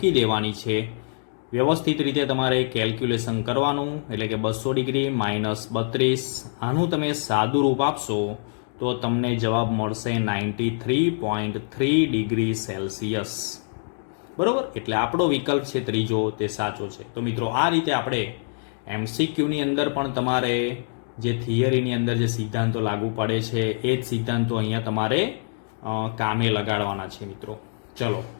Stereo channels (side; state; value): right; silent; digital silence